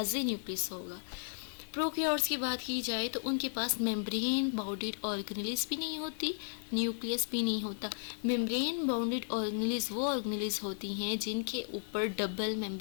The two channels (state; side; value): silent; right; digital silence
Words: न्यूक्लियस होगा। प्रोकैरियोट्स की बात की जाए तो उनके पास मेम्ब्रेन बाउंडेड ऑर्गेनेलिस भी नहीं होती, न्यूक्लियस भी नहीं होता। मेम्ब्रेन बाउंडेड ऑर्गेनेलिस वो ऑर्गेनेलिस होती हैं जिनके ऊपर डबल